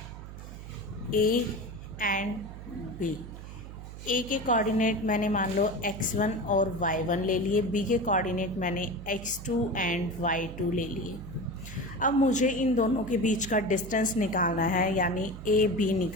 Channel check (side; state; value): right; noise; hum, 12 dB below the sound